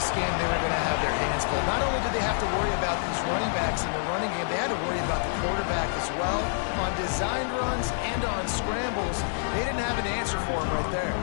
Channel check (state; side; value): silent; right; 58 dB below the other